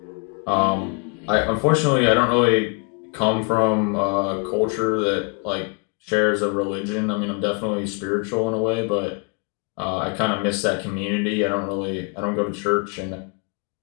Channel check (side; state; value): right; quieter; 36.5 dB